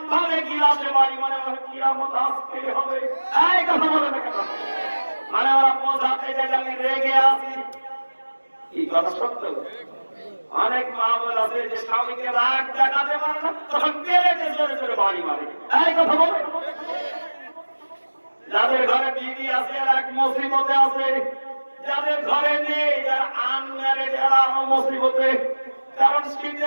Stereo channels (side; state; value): both; inverted; correlation -1.00